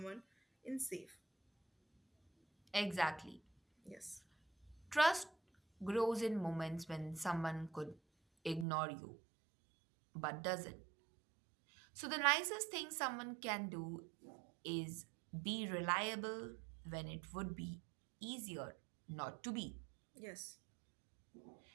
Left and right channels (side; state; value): left; drops out; at 8.7 s